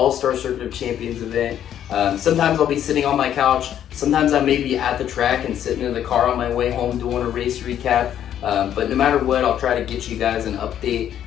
Circuit of Champions event. Sometimes I'll be sitting on my couch. Sometimes I may be at the track and sitting in the car on my way home doing a race recap. But no matter what, I'll try to get you guys an update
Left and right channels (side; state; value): right; quieter; 10.3 dB